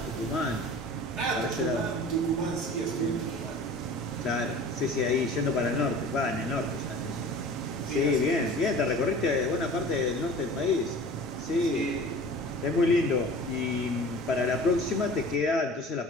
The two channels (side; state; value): both; normal; correlation 0.42